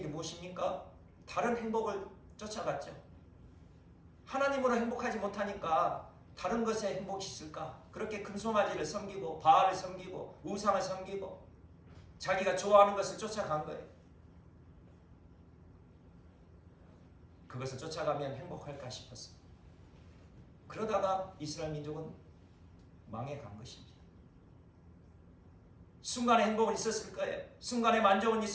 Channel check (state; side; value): identical; both; correlation 1.00